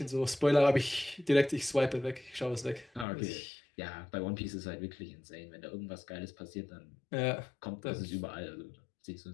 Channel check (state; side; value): drops out; right; at 3.1 s